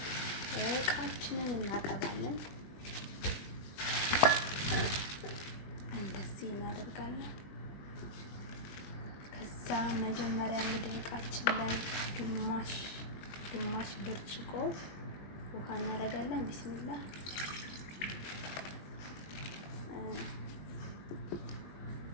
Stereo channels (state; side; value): late; right; 20 ms